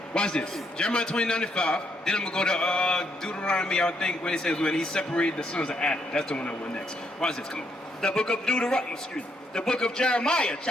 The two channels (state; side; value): normal; both; correlation 0.75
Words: Watch this. Jeremiah 29:5. Then I'm going to go to Deuteronomy, I think, when it says when he separated the sons of Adam. That's the one I want next. Watch this. Come on. The book of the book of Jeremiah,